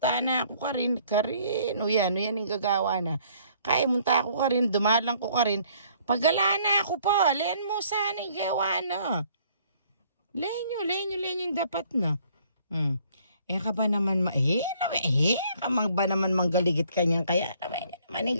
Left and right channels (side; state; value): both; inverted; correlation -0.61